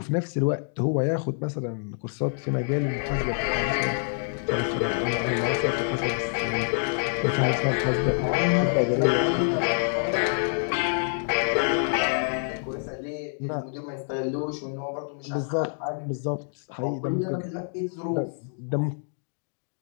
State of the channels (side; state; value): right; silent; digital silence